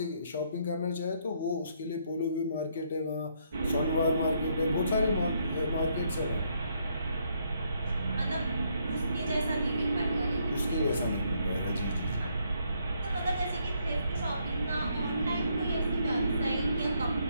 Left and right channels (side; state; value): both; inverted; correlation -0.72